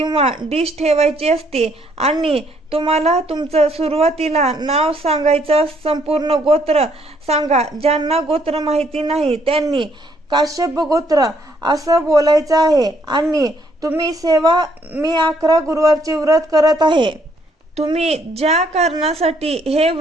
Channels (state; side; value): normal; both; correlation 0.68